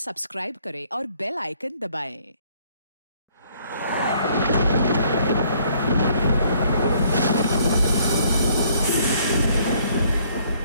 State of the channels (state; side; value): inverted; both; correlation -0.63